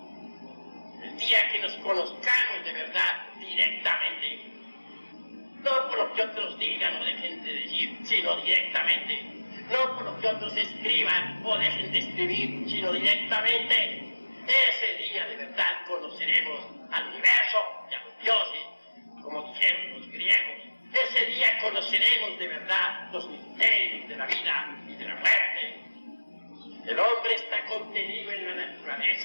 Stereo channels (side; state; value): both; inverted; correlation -1.00